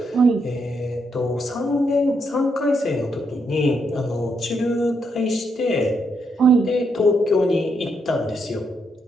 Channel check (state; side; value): normal; both; correlation 0.78